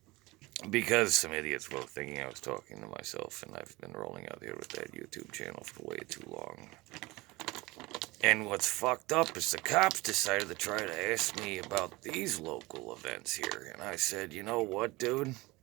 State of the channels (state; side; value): quieter; left; 22.0 dB